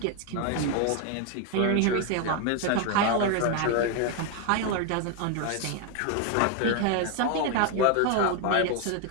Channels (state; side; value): different; both; correlation 0.01